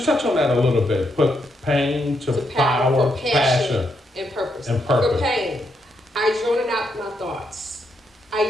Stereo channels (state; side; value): normal; both; correlation 0.79